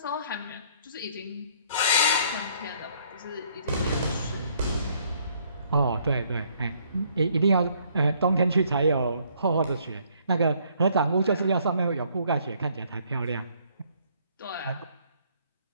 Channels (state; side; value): inverted; both; correlation -0.65